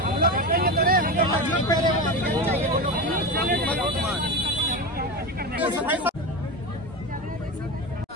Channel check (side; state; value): both; normal; correlation 0.22